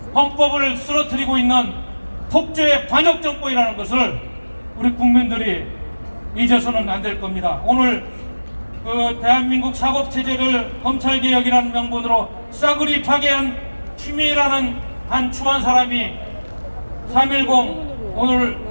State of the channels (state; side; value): inverted; both; correlation -1.00